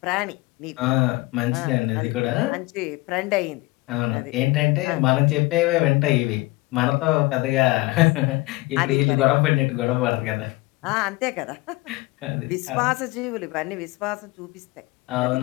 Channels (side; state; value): right; quieter; 22.0 dB